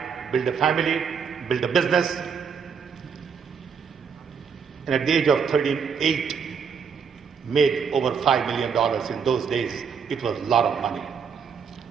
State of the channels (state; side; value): quieter; left; 6.4 dB